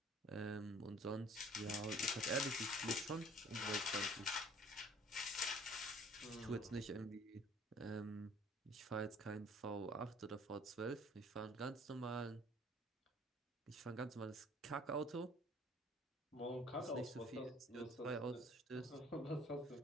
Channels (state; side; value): normal; both; correlation 0.53